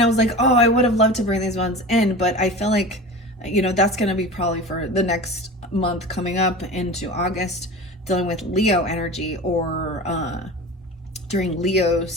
was like, oh, I would have loved to bring these ones in, but I feel like, that's going to be probably for the next month coming up into August, dealing with Leo energy, or during Leo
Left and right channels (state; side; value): normal; both; correlation 0.33